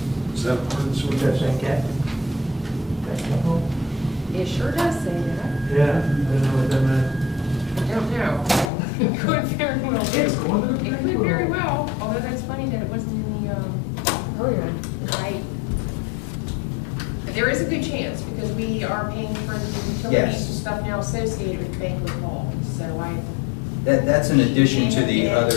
Is that ordinance? What does that say, Cat? Banquet hall? It sure does say that. Yeah, I didn't know what that meant. I don't know. It could very well be. It's going to the It could very well, although that's funny that it wasn't in the, Oh, yeah. right. But there is a good chance, because we are paying for the utilities Yes. and stuff now associated with banquet hall, so That's in addition to the Yeah,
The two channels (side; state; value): right; drops out; at 8.7 s